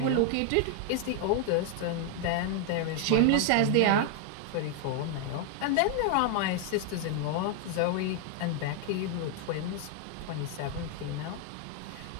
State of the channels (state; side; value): different; both; correlation 0.00